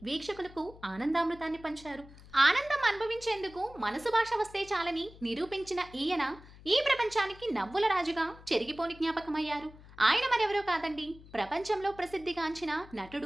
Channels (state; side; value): noise; left; hum, 20 dB below the sound